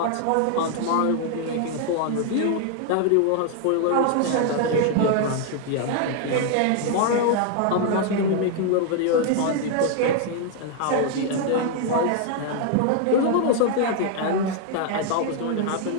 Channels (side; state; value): both; different; correlation 0.00